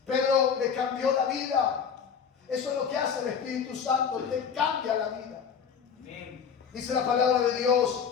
Pedro le cambió la vida. Eso es lo que hace el Espíritu Santo, te cambia la vida. Amén. Dice la palabra de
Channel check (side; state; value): right; quieter; 6.9 dB